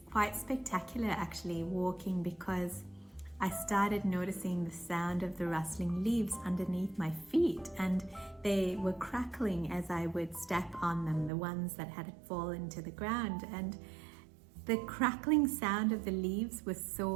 quite spectacular actually walking, because I started noticing the sound of the rustling leaves underneath my feet, and they were crackling as I would step on them, the ones that had fallen to the ground. And the crackling sound of the leaves was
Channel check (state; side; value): drops out; left; at 11.3 s